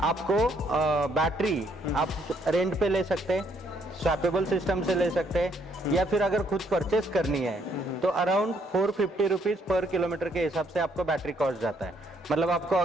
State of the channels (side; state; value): both; normal; correlation 0.69